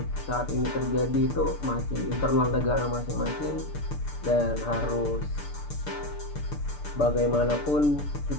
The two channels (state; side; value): late; right; 6.8 ms